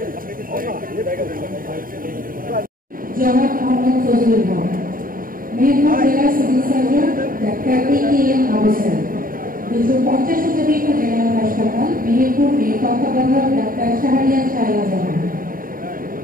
মোহাম্মদ ফজলুল হক, মেহেরপুর জেলা civil surgeon doctor A K M. Ahsan, 250 শতাধিক জেনারেল হাসপাতাল মেহেরপুর এর তত্ত্বাবধায়ক ডাক্তার শাহরিয়ার শায়লা জাহান।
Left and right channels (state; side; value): late; left; 0.41 ms